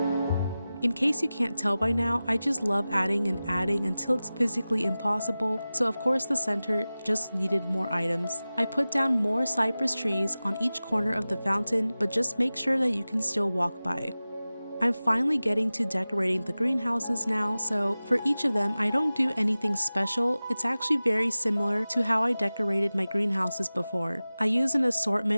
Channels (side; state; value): both; inverted; correlation -0.97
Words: In case you can't tell by now, I just love adding and adding until it's physically impossible, so of course the center just needed more items. I put down more cypress trees on each corner of the fountain, but just make sure that you can still walk by. I'm finally getting to decorating the greenhouses now, so for each of them I don't do anything special. It's actually very similar to how I decorated my greenhouses before. I use an